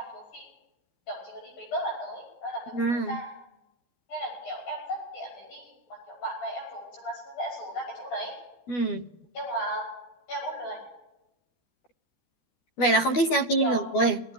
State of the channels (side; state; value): right; late; 12 ms